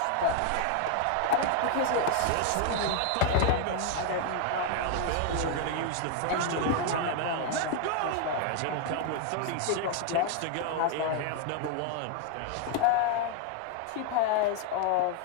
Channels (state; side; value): different; both; correlation 0.00